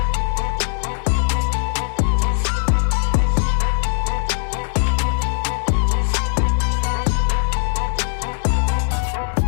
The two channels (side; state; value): right; silent; digital silence